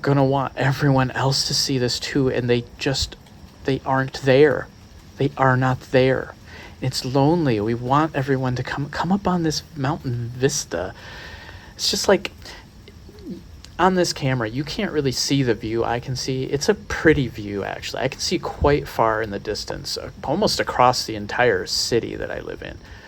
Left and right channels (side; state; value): both; identical; correlation 1.00